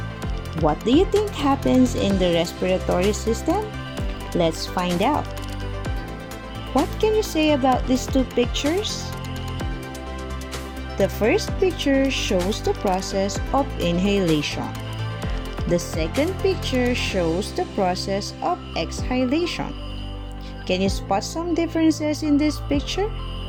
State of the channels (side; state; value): both; identical; correlation 1.00